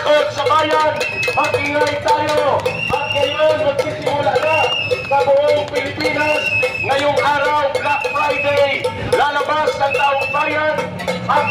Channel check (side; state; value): both; identical; correlation 1.00